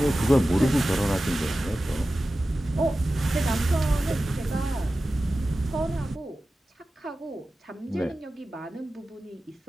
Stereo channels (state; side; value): normal; both; correlation 0.95